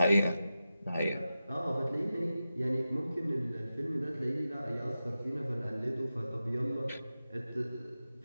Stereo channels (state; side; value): inverted; both; correlation -0.92